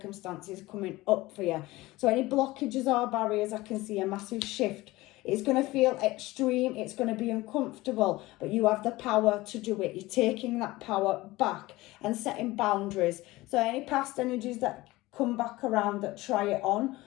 coming up for you. So any blockages or barriers, I can see a massive shift. It's going to feel extreme. It's going to be uncomfortable. But you have the power to do it. You're taking that power back and setting boundaries. So any past energies that come back around that try it on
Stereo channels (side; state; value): right; quieter; 19.3 dB